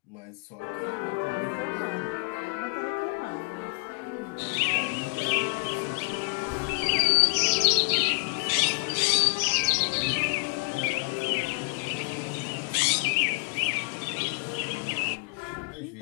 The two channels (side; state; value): right; quieter; 33.4 dB